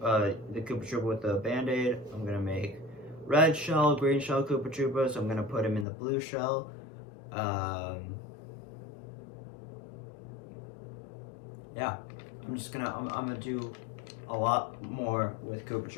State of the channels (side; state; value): right; drops out; at 5.9 s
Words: Troopa with the Band-Aid. I'm gonna make red shell, green shell Koopa Troopas. I'm gonna put him in the blue shell. Yeah, I'm gonna do a lot more with Koopa